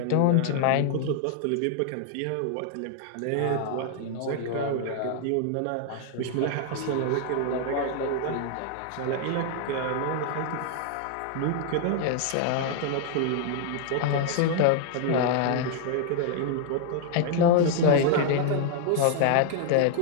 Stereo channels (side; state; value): both; different; correlation 0.00